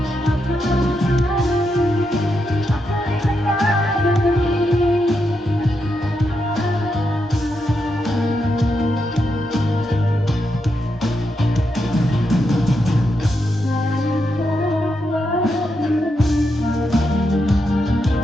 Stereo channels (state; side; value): normal; both; correlation 0.83